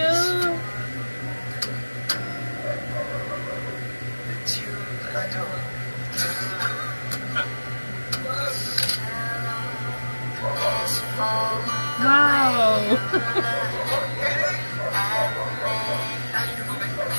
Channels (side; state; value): both; inverted; correlation -1.00